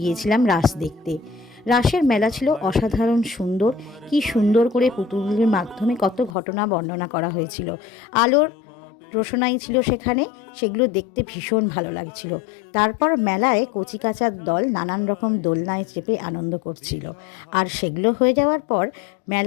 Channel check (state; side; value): drops out; right; at 6.4 s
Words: রাস দেখতে। রাসের মেলা ছিল অসাধারণ সুন্দর। কি সুন্দর করে পুতুলের মাধ্যমে কত ঘটনা বর্ণনা করা হয়েছিল। আলোর রোশনাই ছিল সেখানে, সেগুলো দেখতে ভীষণ ভালো লাগছিল। তারপর মেলায় কচিকাঁচার দল নানান রকম দোলনায় চেপে আনন্দ করছিল। আর সেগুলো হয়ে যাওয়ার পর